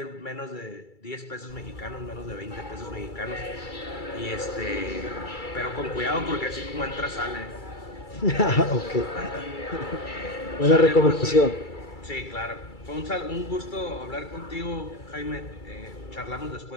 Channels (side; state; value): right; late; 2.3 ms